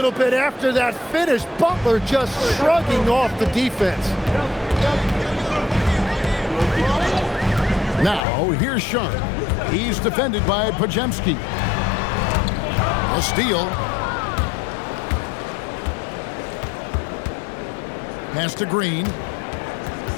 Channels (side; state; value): right; drops out; at 8.2 s